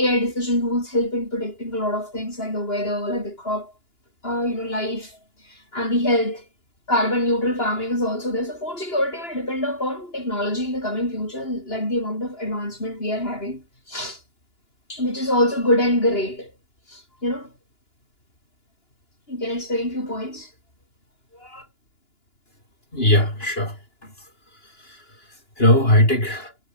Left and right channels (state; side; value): late; right; 2.9 ms